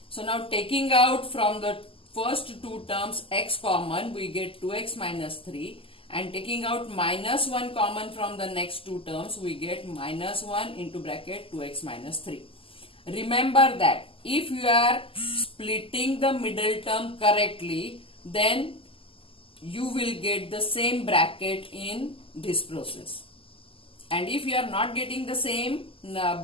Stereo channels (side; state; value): right; late; 0.26 ms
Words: So now taking out from the first two terms x common, we get 2x minus 3, and taking out minus 1 common from the next two terms, we get minus 1 into bracket 2x minus 3. Remember that if you are splitting the middle term correctly, then you will get the same bracket in this process. And if you are not getting the same